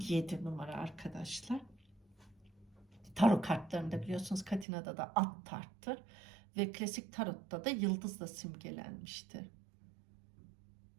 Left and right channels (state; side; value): drops out; left; at 4.7 s